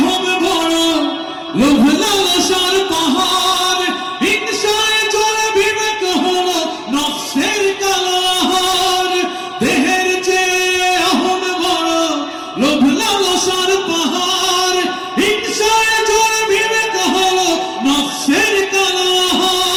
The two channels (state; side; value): identical; both; correlation 1.00